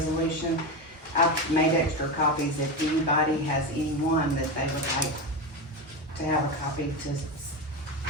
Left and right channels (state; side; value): normal; both; correlation 0.17